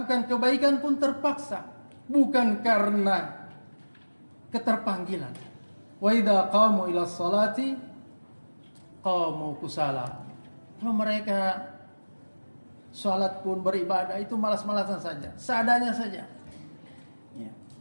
kebaikan pun terpaksa, bukan karena keterpanggilan. Wa idza qamu ila sholati qamu kusala. Kalau mereka salat pun beribadah itu malas-malasan saja, seadanya saja. Ya.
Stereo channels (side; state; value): both; inverted; correlation -1.00